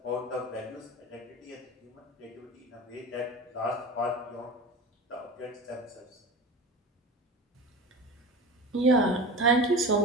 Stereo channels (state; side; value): normal; both; correlation 0.32